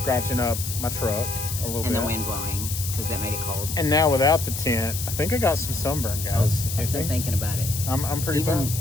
up my truck a little bit. And the wind blowing, because that made it cold. And now without the tent, I think I got some sunburn, guys. There's no thinking about it. I'm pretty Even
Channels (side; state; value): left; noise; hiss, 6 dB below the sound